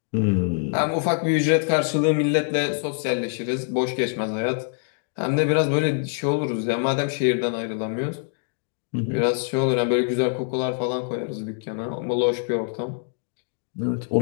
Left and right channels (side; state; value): right; silent; 62 dB below the other